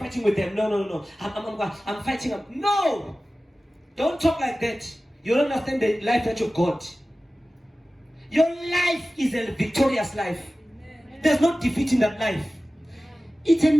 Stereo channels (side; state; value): both; normal; correlation 0.96